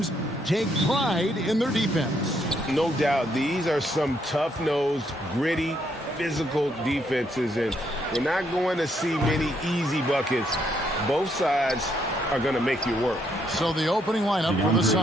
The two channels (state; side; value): normal; both; correlation 0.73